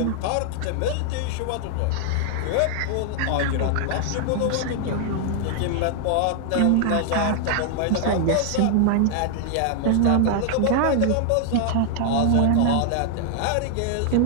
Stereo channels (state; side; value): different; both; correlation 0.00